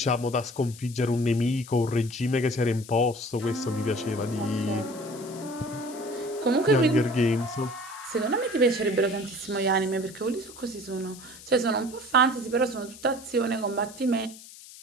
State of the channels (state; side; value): noise; left; hiss, 18 dB below the sound